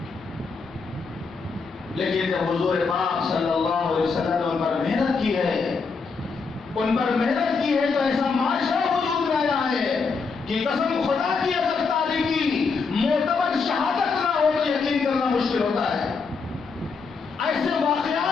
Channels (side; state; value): right; quieter; 4.8 dB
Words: لیکن جب حضور پاک صلی اللہ علیہ وسلم نے ان پر محنت کی ہے، ان پر محنت کی ہے تو ایسا معاشرہ وجود میں آیا ہے کہ قسم خدا کی اگر تعلیم کی